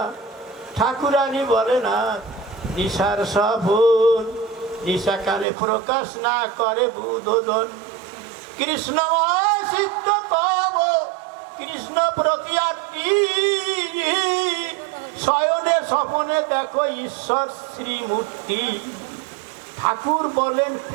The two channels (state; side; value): drops out; left; at 5.5 s